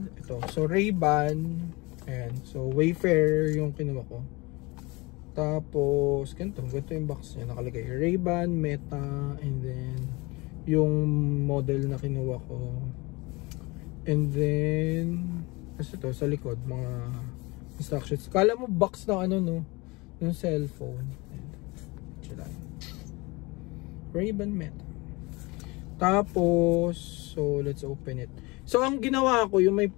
ito, so Ray-Ban. Ayan. So Wayfarer yung kinuha ko. Tapos ganito yung box niya, nakalagay Ray-Ban Meta. And then yung model na kinuha ko. And then kasi ito sa likod mga instructions. Kala mo box na yung cellphone. Ray-Ban Meta. Tapos so let's open it. So ang ginawa ko,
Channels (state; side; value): quieter; right; 24.6 dB